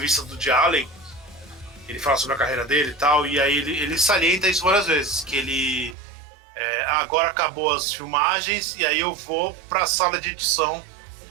do Woody Allen. Ele fala sobre a carreira dele e tal, e aí ele salienta isso várias vezes, que ele agora acabou as filmagens e aí eu vou pra sala de edição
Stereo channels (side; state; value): left; drops out; at 6.0 s